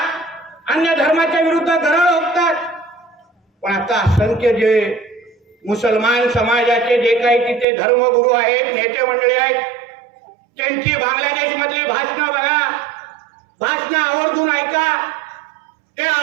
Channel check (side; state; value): left; drops out; at 7.7 s